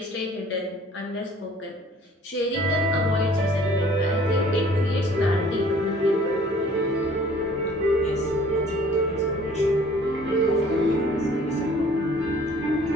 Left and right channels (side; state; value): both; normal; correlation 0.53